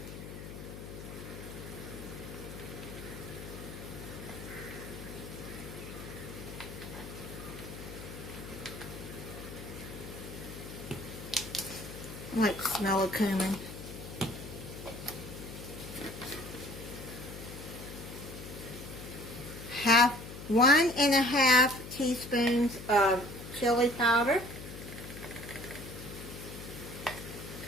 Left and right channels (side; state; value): left; noise; hum, 11 dB below the sound